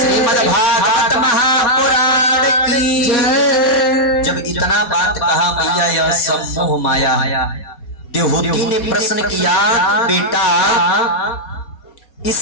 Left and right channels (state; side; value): late; right; 4.1 ms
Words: भागवत महापुराण की। जब इतना बात कहा मैया यह सब मोह माया है। देवहूति ने प्रश्न किया, बेटा